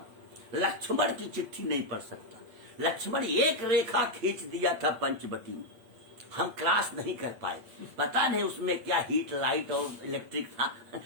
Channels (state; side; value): late; left; 8.8 ms